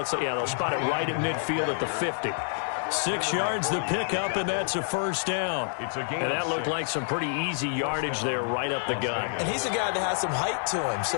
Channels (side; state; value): right; silent; 60 dB below the other